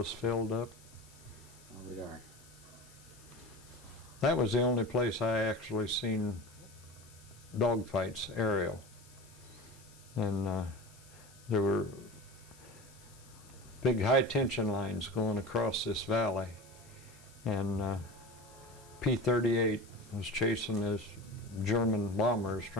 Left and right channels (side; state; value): left; noise; hiss, 24 dB below the sound